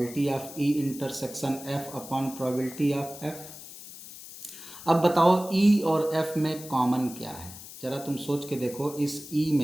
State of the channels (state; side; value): noise; left; hiss, 15 dB below the sound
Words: of E intersection F upon probability of F. अब बताओ ई और एफ में कॉमन क्या है, जरा तुम सोच के देखो। इस ई